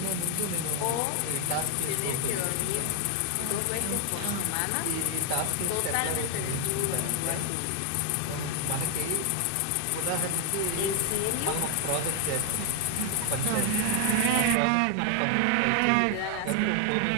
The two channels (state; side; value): different; both; correlation 0.00